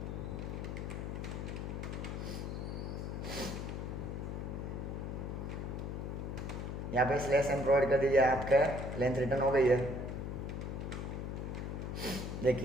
यहाँ पे स्लैश एन प्रोवाइड कर दीजिए, आपका लेंथ रिटर्न हो गई है।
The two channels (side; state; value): left; noise; hum, 4 dB below the sound